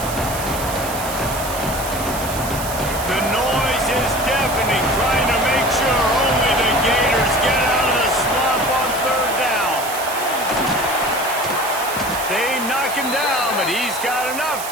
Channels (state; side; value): noise; right; hiss, 9 dB below the sound